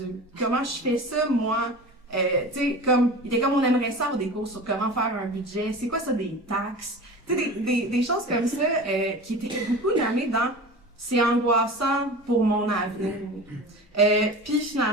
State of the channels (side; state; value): both; normal; correlation 0.34